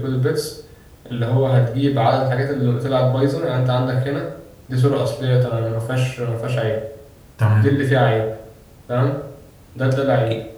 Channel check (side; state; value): both; identical; correlation 1.00